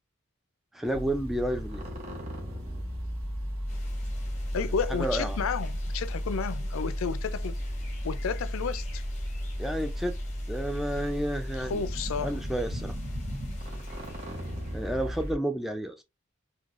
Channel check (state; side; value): normal; both; correlation 0.67